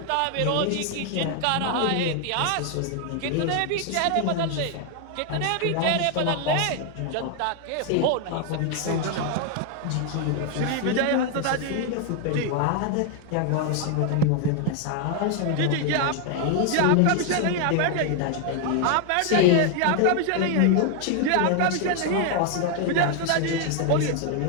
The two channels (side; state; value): both; different; correlation 0.01